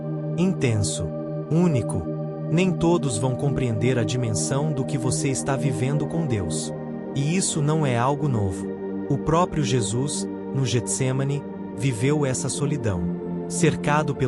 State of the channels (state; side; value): identical; both; correlation 1.00